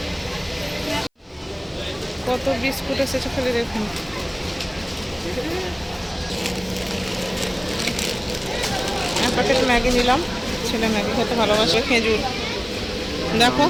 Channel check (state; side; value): identical; both; correlation 1.00